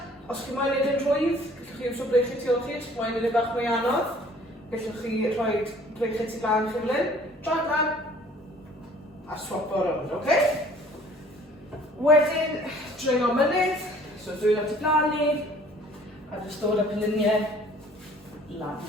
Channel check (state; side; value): normal; both; correlation 0.54